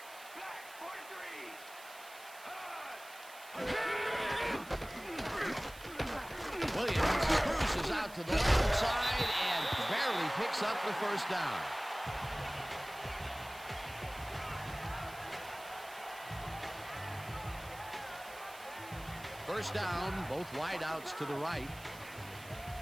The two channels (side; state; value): right; noise; hiss, 18 dB below the sound